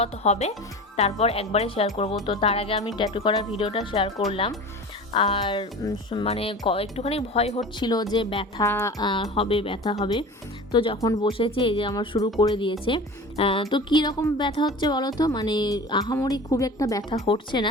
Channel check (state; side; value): normal; both; correlation 0.36